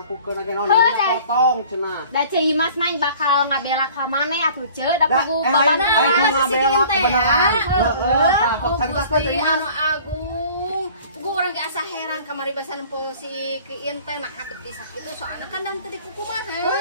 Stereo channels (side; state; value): both; inverted; correlation -0.48